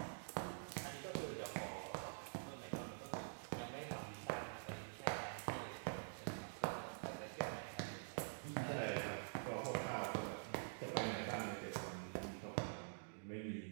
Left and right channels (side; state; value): left; silent; digital silence